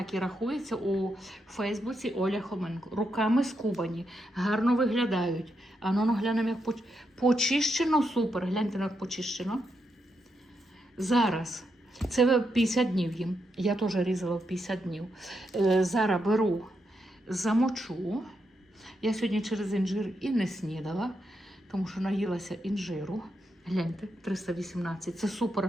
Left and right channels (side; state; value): both; normal; correlation 0.83